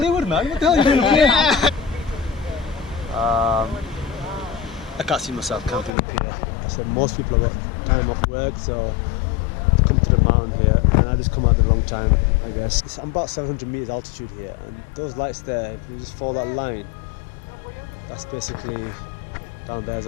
man. What the hell are you doing here? I can't see myself camping up here. I said most people have got time off work, so come to the mountain here, and I just come at the wrong time, I guess. I'm about 700 meters altitude here, and those lights there, if you just follow that line, that's basically down there's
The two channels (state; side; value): drops out; right; at 5.9 s